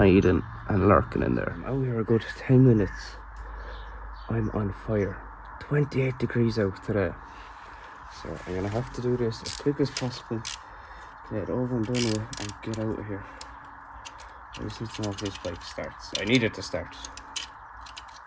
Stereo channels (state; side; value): identical; both; correlation 1.00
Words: and lurking in there. I'm out here a good 10 minutes. I'm on fire. 28 degrees out today. So I'm going to have to do this as quick as possible. Get it over and done with and get out of here. I just need to know if this bike starts. I need it to start.